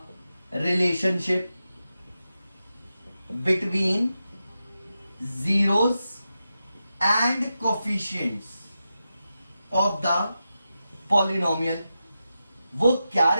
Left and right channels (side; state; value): both; inverted; correlation -0.90